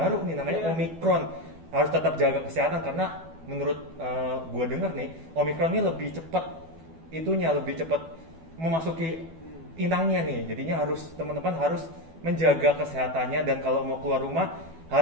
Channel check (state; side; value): late; left; 12 ms